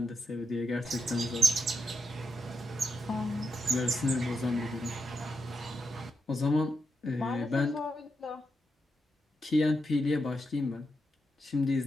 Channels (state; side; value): normal; both; correlation 0.84